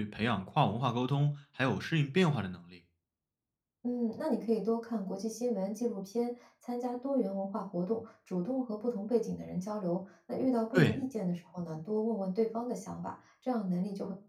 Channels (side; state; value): both; identical; correlation 1.00